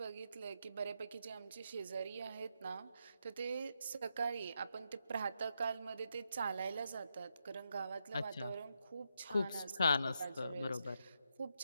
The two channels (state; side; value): inverted; both; correlation -0.82